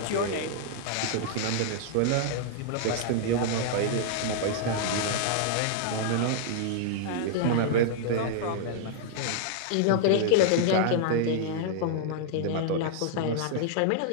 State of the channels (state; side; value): different; both; correlation -0.01